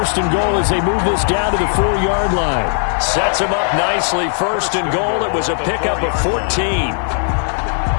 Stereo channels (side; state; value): right; silent; digital silence